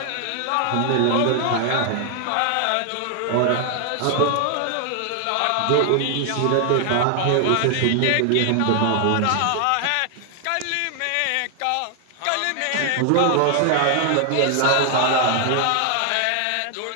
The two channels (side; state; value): both; different; correlation 0.00